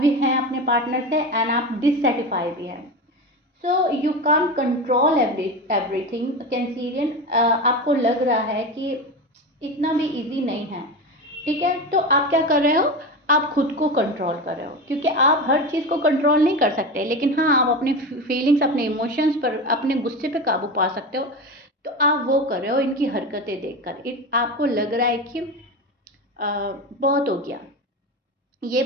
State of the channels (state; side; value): normal; both; correlation 0.23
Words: भी हैं अपने पार्टनर से, एंड आप डिससेटिस्फाई भी हैं। So you can't control everything Cancerian, आपको लग रहा है कि इतना भी इजी नहीं है, ठीक है। तो आप क्या कर रहे हो, आप खुद को कंट्रोल कर रहे हो, क्योंकि आप हर चीज़ को कंट्रोल नहीं कर सकते, लेकिन हाँ आप अपने फीलिंग्स, अपने इमोशंस पर, अपने गुस्से पे काबू पा सकते हो। तो आप वो कर रहे हो इनकी हरकतें देखकर, आपको लग रहा है कि बहुत हो गया, ये